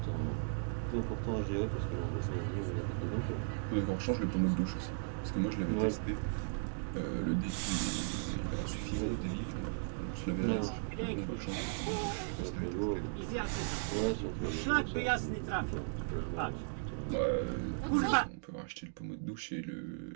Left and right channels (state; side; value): silent; left; digital silence